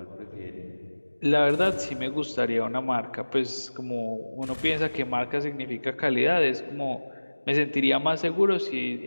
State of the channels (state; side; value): inverted; both; correlation -1.00